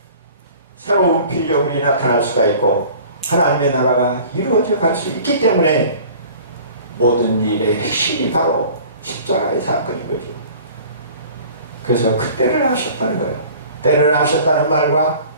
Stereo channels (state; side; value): inverted; both; correlation -0.46